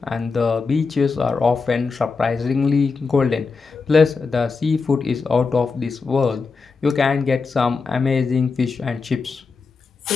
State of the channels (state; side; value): quieter; right; 4.6 dB